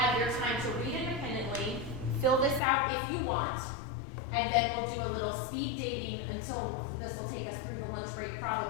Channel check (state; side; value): drops out; right; at 2.6 s